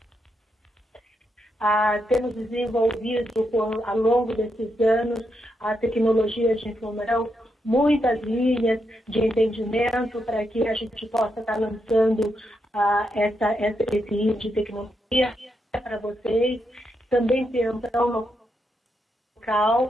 Temos desenvolvido ao longo desses anos a tecnologia de informação, muitas linhas de entendimento para que a gente possa estar lançando esse item de tecnologia para vocês. Também temos local,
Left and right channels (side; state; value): both; normal; correlation 0.82